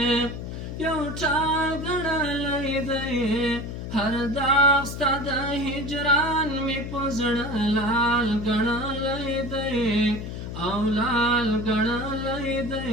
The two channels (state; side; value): noise; left; hum, 7 dB below the sound